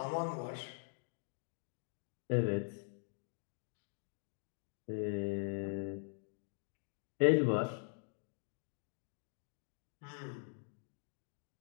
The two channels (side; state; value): right; silent; digital silence